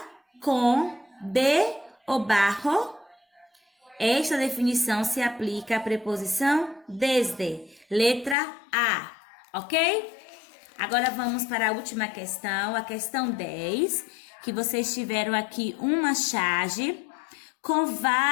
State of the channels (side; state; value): right; drops out; at 8.3 s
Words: com, de ou bajo. Esta definição se aplica à preposição desde. Letra A, ok? Agora vamos para a última questão, a questão 10, que vocês tiveram aqui uma charge com